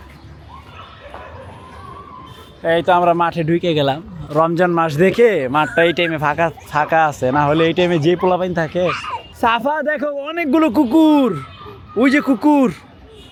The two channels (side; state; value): both; identical; correlation 1.00